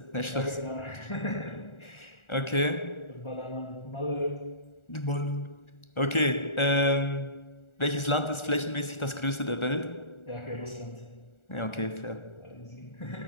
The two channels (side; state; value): right; late; 1.4 ms